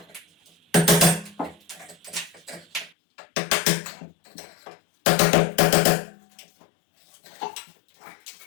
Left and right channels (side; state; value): right; drops out; at 2.9 s